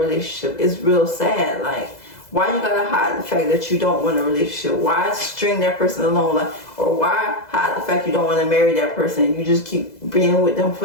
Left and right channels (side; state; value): right; late; 2.0 ms